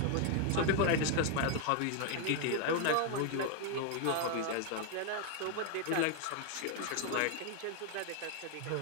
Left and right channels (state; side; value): different; both; correlation 0.00